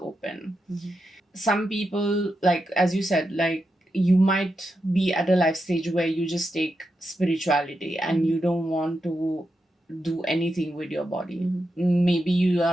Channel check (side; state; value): both; normal; correlation 0.87